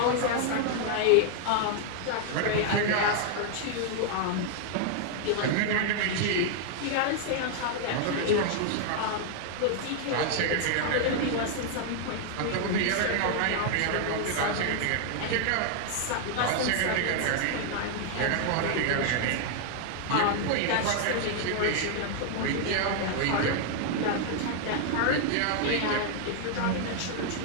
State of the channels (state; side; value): different; both; correlation 0.00